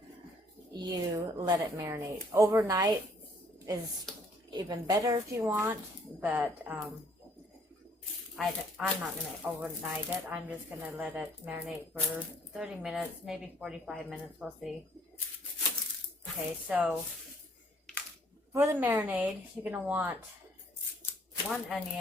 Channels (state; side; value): normal; both; correlation 0.62